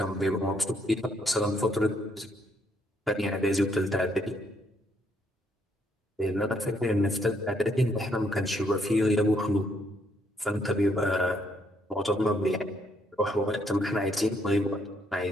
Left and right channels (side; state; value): both; normal; correlation 0.71